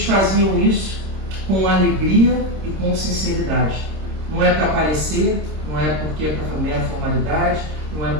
faziam isso com alegria e com sinceridade. Não é para aparecer, não é porque é para mera formalidade, não é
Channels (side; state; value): left; late; 26 ms